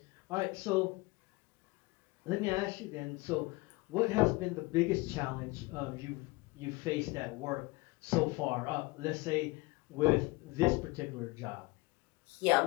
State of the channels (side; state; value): right; quieter; 23.6 dB